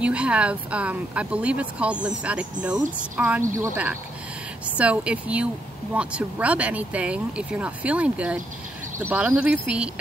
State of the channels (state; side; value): normal; both; correlation 0.77